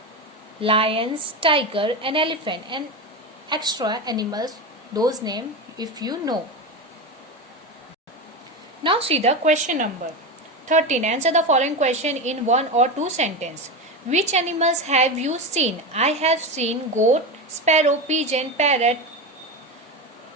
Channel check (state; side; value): normal; both; correlation 0.19